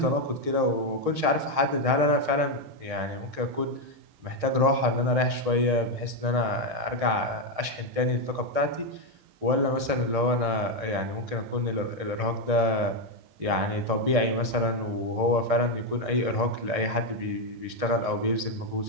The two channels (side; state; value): left; late; 6.5 ms